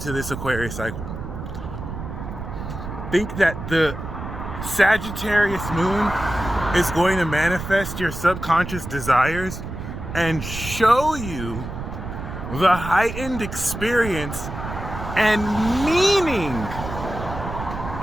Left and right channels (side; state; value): right; noise; rumble, 8 dB below the sound